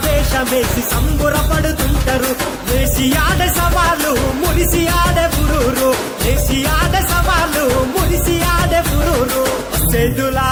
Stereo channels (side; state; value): both; identical; correlation 1.00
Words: వేషమేసి సంబురపడుతుంటారు వేసి ఆడే సవాలు మురిసి ఆడే పురూరు వేసి ఆడే సవాలు మురిసి ఆడే పురూరు సేదులా